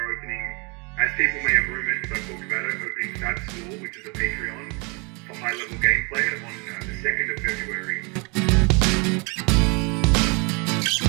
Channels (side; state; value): left; quieter; 31.2 dB